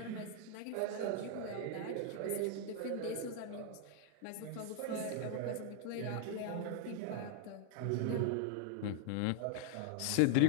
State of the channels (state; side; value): different; both; correlation 0.00